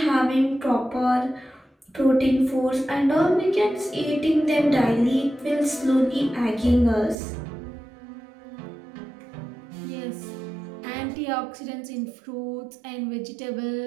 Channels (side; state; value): left; drops out; at 7.2 s